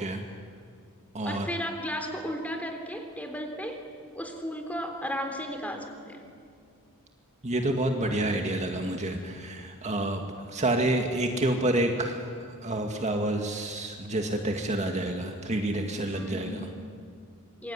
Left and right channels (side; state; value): both; normal; correlation 0.50